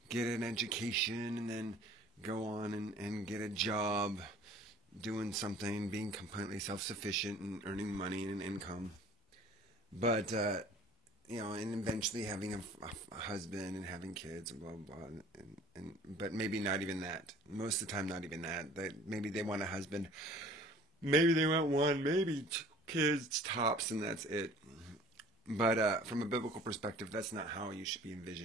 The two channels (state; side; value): normal; both; correlation 0.49